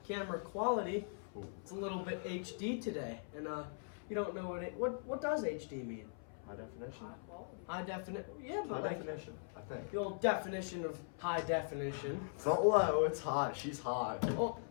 camera quality, it's a little bit HD today, and you don't know what does HD mean? High definition. High quality. High definition. Yeah, but High like definition, I think. the old definition of high definition. It's not low, it's high. She's high. Well,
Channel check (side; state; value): right; silent; 51 dB below the other